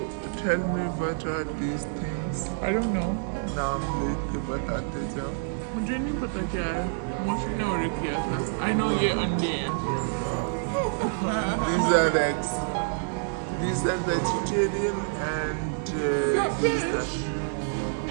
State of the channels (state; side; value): silent; left; digital silence